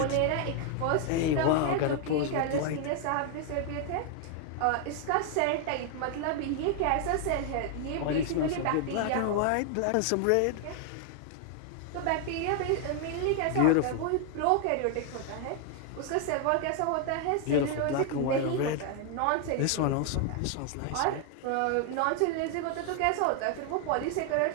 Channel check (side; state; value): both; different; correlation 0.00